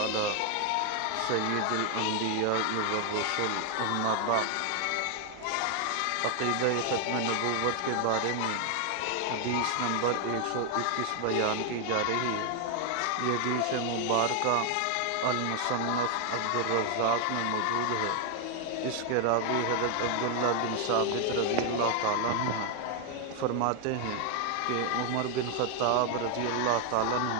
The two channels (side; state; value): both; different; correlation 0.01